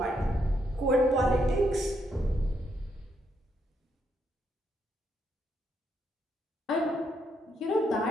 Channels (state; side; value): normal; both; correlation 0.77